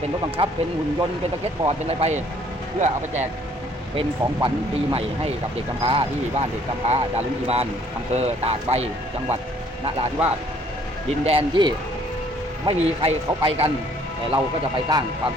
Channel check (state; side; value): normal; both; correlation 0.61